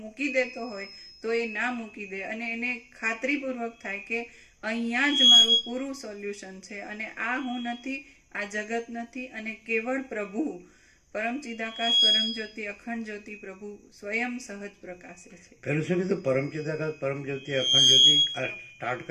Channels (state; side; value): identical; both; correlation 1.00